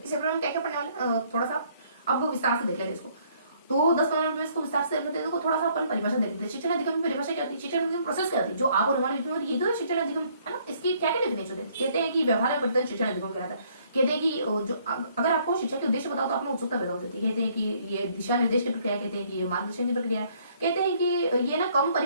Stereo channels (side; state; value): both; inverted; correlation -0.64